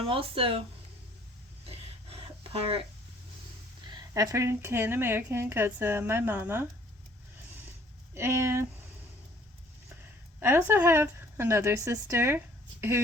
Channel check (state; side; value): normal; both; correlation 0.58